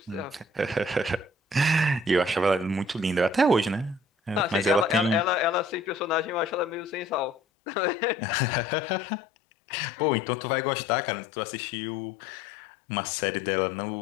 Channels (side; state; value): right; drops out; at 7.4 s